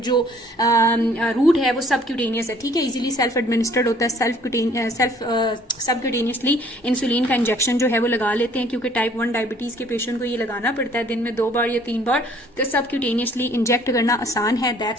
जो रूट है वो सबक्यूटेनियस है। ठीक है, इजीली सेल्फ एडमिनिस्टर्ड होता है, सबक्यूटेनियसली इंसुलिन का इंजेक्शन जो है वो लगा लेते हैं, क्योंकि टाइप 1 डायबिटीज के पेशेंट को ये लगाना पड़ता है दिन में 2 बार या 3 बार, तो सबक्यूटेनियसली इंजेक्ट करना आसान है।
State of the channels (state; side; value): normal; both; correlation 0.58